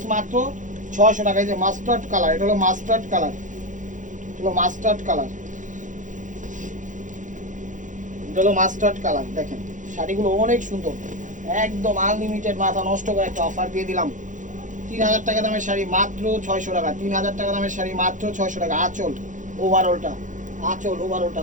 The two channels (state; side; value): late; left; 0.37 ms